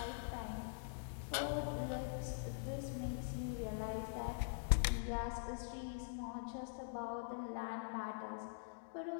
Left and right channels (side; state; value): right; silent; digital silence